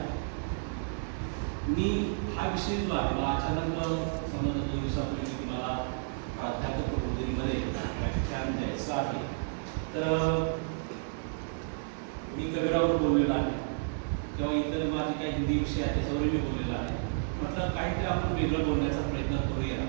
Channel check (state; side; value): silent; left; digital silence